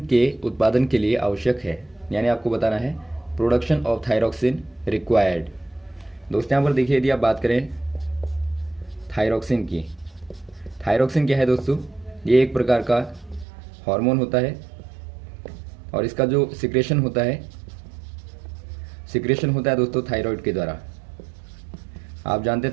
के उत्पादन के लिए आवश्यक है, यानी आपको बताना है प्रोडक्शन ऑफ थायरॉक्सिन रिक्वायर्ड। दोस्तों यहाँ पर देखिए, यदि आप बात करें थायरॉक्सिन की, थायरॉक्सिन क्या है दोस्तों, ये एक प्रकार का हार्मोन होता है और इसका जो सिक्रेशन होता है दोस्तों थायराइड के द्वारा। आप जानते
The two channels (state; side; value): drops out; left; at 13.5 s